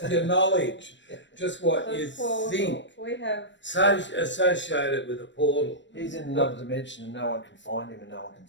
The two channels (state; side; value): late; right; 0.53 ms